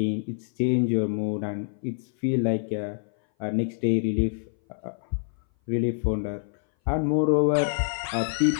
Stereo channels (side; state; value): right; silent; 58 dB below the other